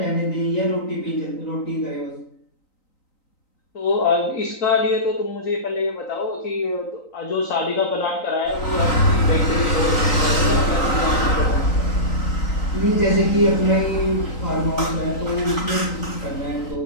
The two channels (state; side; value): late; right; 3.9 ms